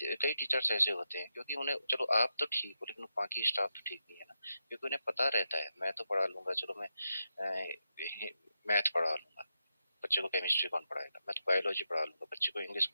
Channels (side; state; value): both; inverted; correlation -0.86